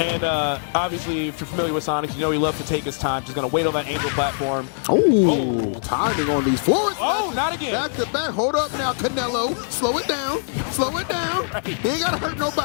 obviously, if you're familiar with Sonics, you know he loves to take his time. Just going to wait on that angel platform. Oh, timing on these floors. Oh, not again. Back to back. Hold up now, Canelo. Slow it down. Slow it down. He ain't got to hurt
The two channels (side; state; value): right; silent; digital silence